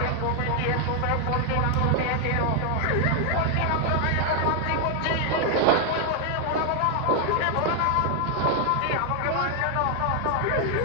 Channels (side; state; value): both; different; correlation 0.00